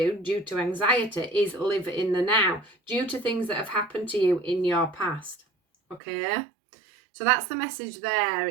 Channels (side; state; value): left; drops out; at 6.0 s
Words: due to anxiety is live in the now, due to things that have happened to you in your past. Okay? So that's the message there.